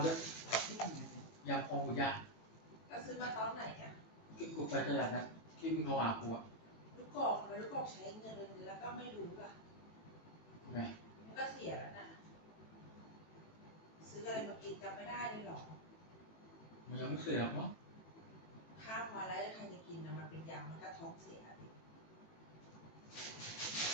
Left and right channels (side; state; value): right; late; 18 ms